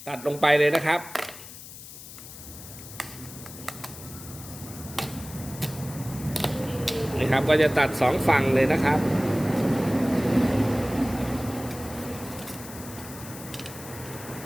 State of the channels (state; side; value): noise; left; hiss, 14 dB below the sound